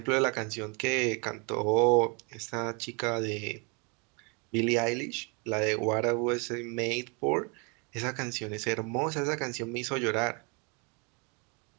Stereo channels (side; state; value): left; quieter; 33.2 dB